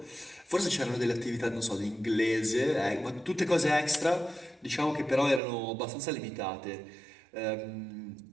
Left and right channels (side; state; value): left; drops out; at 5.4 s